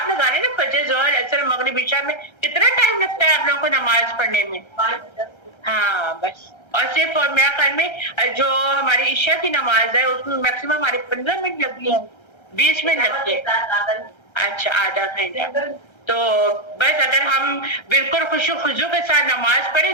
لگا لیں نا, فجر ظہر عصر مغرب عشاء میں کتنا ٹائم لگتا ہے آپ لوگوں کو نماز پڑھنے میں؟ ہاں بس. اور صرف اور میرا خیال میں جو ہماری عشاء کی نماز ہے اس میں میکسیمم ہمارے 15 منٹ لگتی ہے, 20 منٹ لگتے ہیں. اچھا, آدھا گھنٹہ. تو بس اگر ہم بالکل خوشو خضو کے ساتھ نماز پڑھیں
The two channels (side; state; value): right; late; 1.3 ms